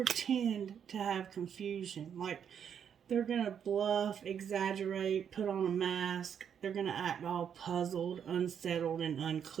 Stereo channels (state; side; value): quieter; left; 8.1 dB